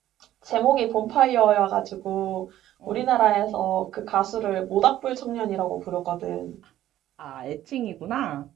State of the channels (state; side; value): quieter; left; 13.1 dB